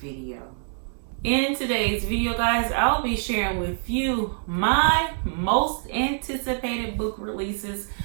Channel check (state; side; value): silent; left; digital silence